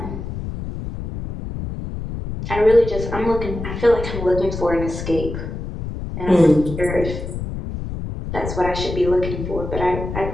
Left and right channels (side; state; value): left; noise; rumble, 7 dB below the sound